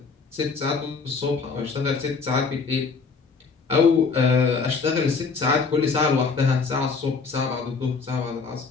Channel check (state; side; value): quieter; right; 4.8 dB